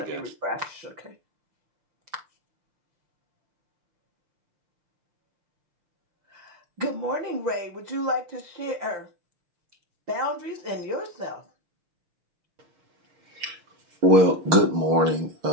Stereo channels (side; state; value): left; late; 6.4 ms